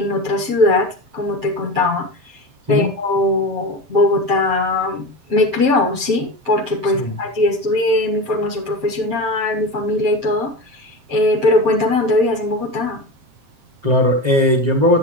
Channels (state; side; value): late; left; 7.6 ms